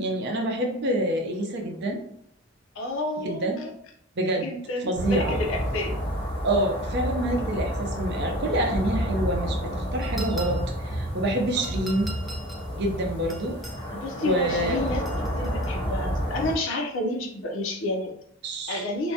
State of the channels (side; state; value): both; normal; correlation 0.37